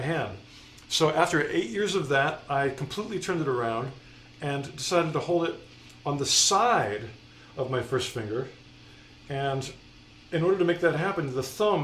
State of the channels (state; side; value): identical; both; correlation 1.00